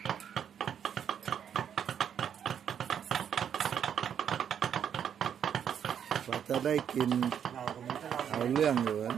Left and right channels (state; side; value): quieter; left; 8.6 dB